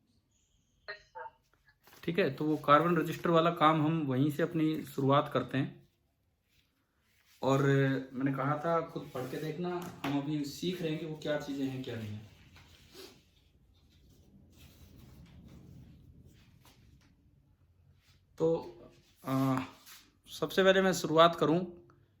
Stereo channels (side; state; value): both; identical; correlation 1.00